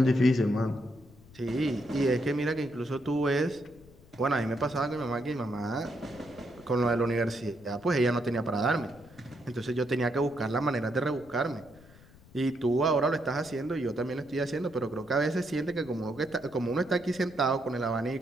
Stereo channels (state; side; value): noise; left; rumble, 23 dB below the sound